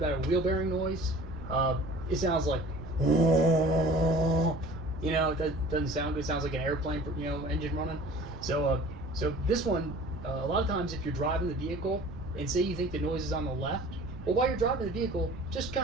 a wheel bearing noise. It sounds like, you know, it doesn't sound good. It sounds like an airplane, engine running. So this one, a lot of times if you're driving the vehicle and say you think the noise is on the left, well, while you're driving the vehicle, just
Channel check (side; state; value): right; noise; rumble, 13 dB below the sound